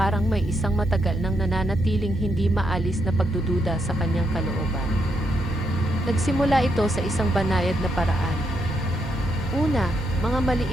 may isang matagal nang nananatiling hindi maalis na pagdududa sa kanyang kalooban. Nagsimula ito sa isang banayad na paraan. Una, mga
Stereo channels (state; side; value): normal; both; correlation 0.79